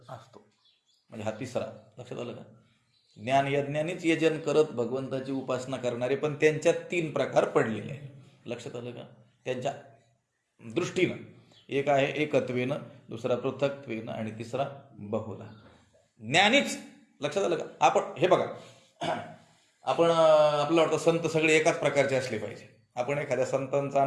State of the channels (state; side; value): identical; both; correlation 1.00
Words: म्हणजे हा तिसरा. लक्षात आलं का? ज्ञान यज्ञानेच यजन करत भगवंताची उपासना करणारे, पण त्यांच्यात 3 प्रकार पडलेले आहेत. लक्षात आलं का? त्यांच्या दृष्टीनं एक आहे एकत्वेनं, दुसरा पृथक्त्वेनं आणि तिसरा बहुला. ज्ञानीच. लक्षात आलं का? आपण हे बघा, आपण आपल्याला वाटतं संत सगळे एकाच प्रकारचे असले पाहिजे. आपण एखाद्या संतांचा